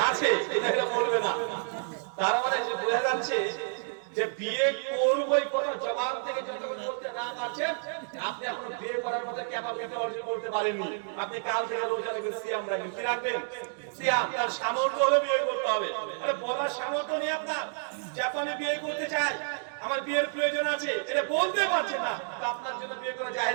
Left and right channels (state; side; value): silent; left; digital silence